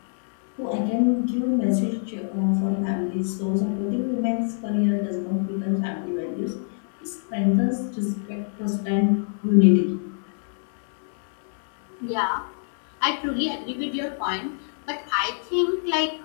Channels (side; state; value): right; silent; digital silence